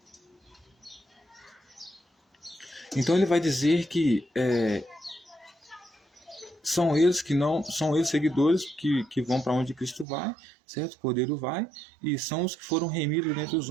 Então ele vai dizer que são eles que não são eles seguidores que vão para onde Cristo vai, certo? O Cordeiro vai, e são os que foram remidos dentre os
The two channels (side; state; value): left; drops out; at 10.1 s